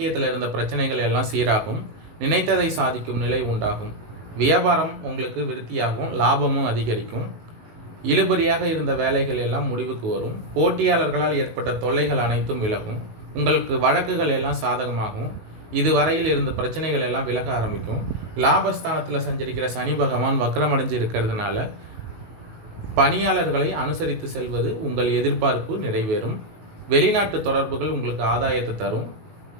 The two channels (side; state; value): left; late; 18 ms